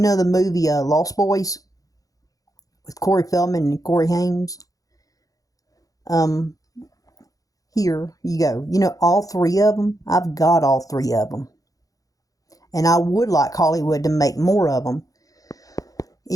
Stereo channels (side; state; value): right; late; 0.17 ms